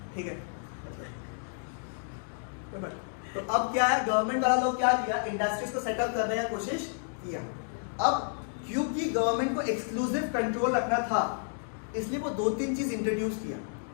ठीक है। तो अब क्या है, गवर्नमेंट वाला लोग क्या किया, इंडस्ट्रीज को सेटअप करने की कोशिश किया। अब क्योंकि गवर्नमेंट को एक्सक्लूसिव कंट्रोल रखना था, इसलिए वो 2-3 चीज इंट्रोड्यूस किया।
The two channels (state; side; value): silent; right; digital silence